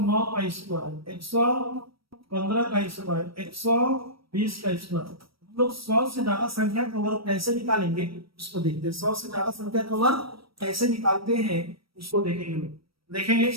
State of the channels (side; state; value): left; late; 0.75 ms